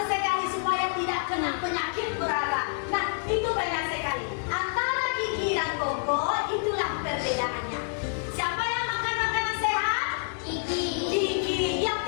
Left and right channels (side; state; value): right; silent; digital silence